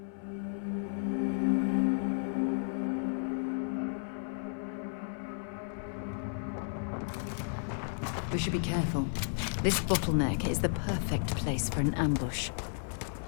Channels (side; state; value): right; silent; 56 dB below the other